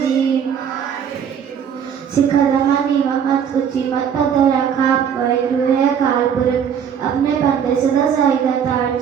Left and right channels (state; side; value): quieter; left; 7.9 dB